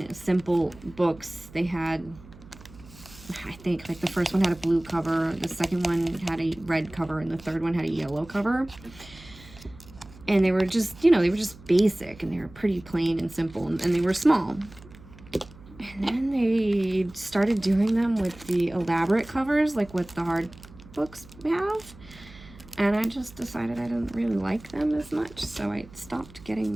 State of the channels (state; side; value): noise; right; hum, 21 dB below the sound